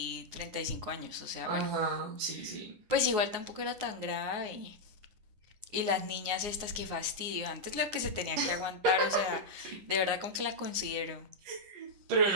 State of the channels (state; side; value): late; left; 9.6 ms